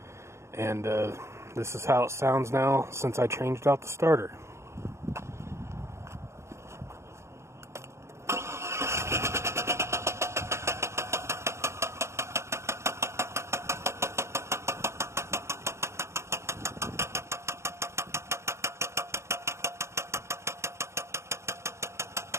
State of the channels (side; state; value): left; late; 0.13 ms